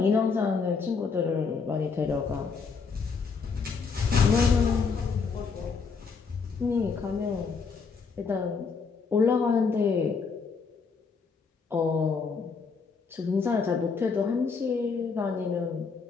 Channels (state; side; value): quieter; right; 5.2 dB